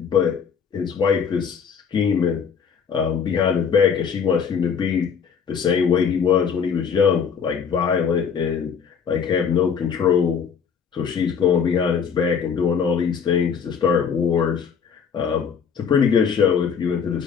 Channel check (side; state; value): right; quieter; 6.7 dB